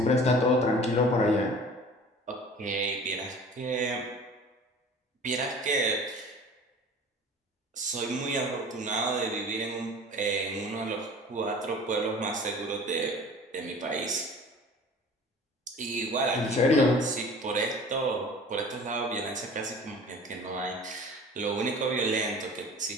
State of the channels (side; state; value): both; normal; correlation 0.43